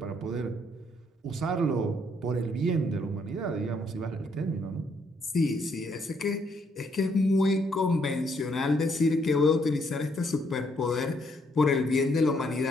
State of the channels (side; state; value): both; normal; correlation 0.71